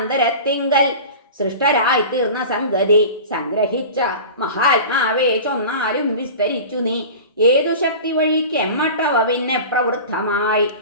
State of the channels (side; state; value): both; inverted; correlation -0.35